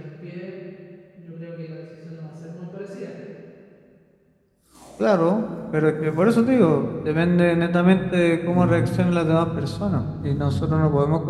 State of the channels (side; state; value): both; identical; correlation 1.00